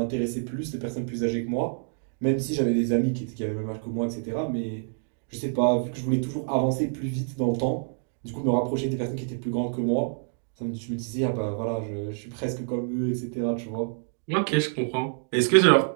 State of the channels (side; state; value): left; silent; digital silence